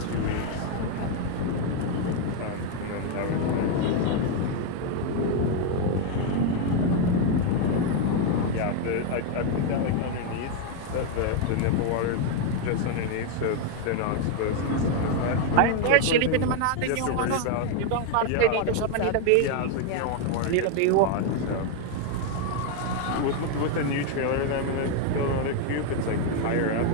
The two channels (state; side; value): different; both; correlation 0.01